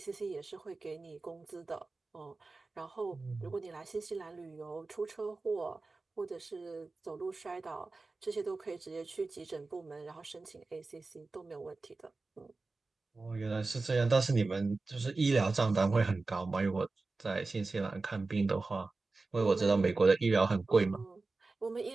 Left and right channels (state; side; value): quieter; left; 3.6 dB